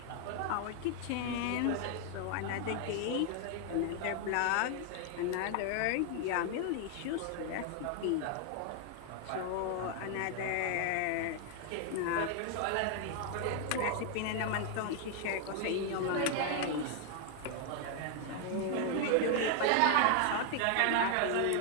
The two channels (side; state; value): both; different; correlation 0.00